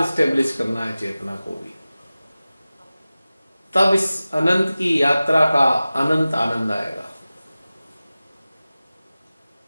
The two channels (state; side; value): inverted; both; correlation -0.96